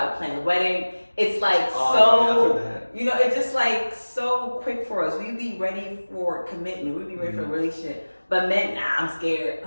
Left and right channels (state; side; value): inverted; both; correlation -1.00